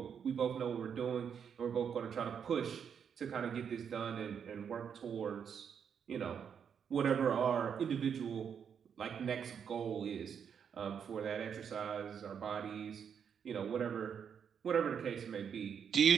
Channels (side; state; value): left; quieter; 7.5 dB